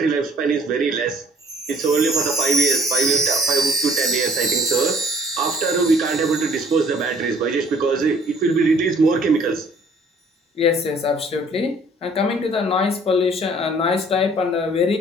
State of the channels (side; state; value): both; normal; correlation 0.57